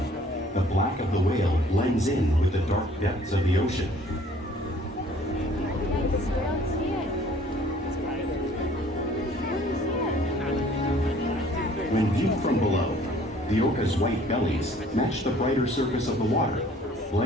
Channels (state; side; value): normal; both; correlation 0.55